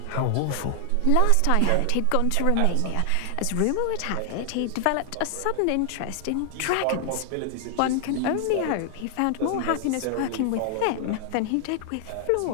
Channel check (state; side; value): different; both; correlation 0.00